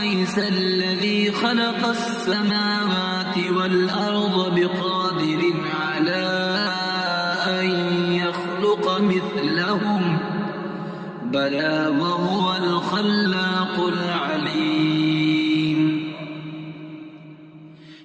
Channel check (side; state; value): both; identical; correlation 1.00